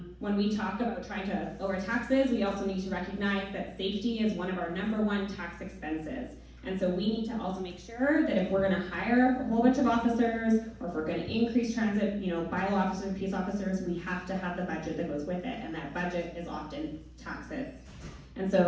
when we talk about trying to lower taxes, we also need to recognize that safety is one of our #1 tax expenses. And so we need to also make sure that if we're gonna hire a whole bunch of officers, or if we're gonna increase transit, bylaw officers, peace officers, we have to have the budget that goes with it, and that budget is often taxes. And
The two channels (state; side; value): identical; both; correlation 1.00